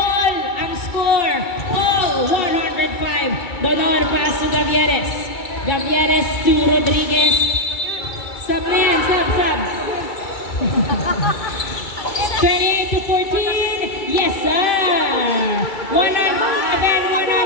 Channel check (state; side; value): late; right; 2.3 ms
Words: ang score. All 105. Donor pass to Gavieres. Gavieres to Rodriguez. Sub na yan, sub. 28 to 14. Yes, sir. 105.